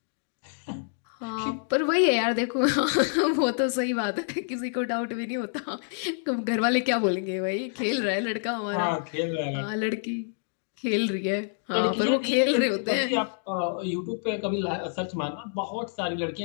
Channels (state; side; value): silent; right; digital silence